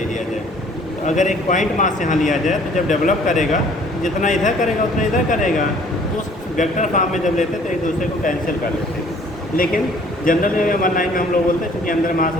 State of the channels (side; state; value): both; normal; correlation 0.56